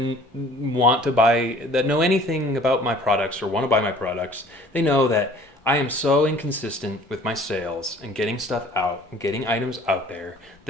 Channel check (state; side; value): normal; both; correlation 0.51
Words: want to buy, that know anything about my products or want to buy my products, they know that I am so inconsistent with my sales and getting stuff out and getting items out there.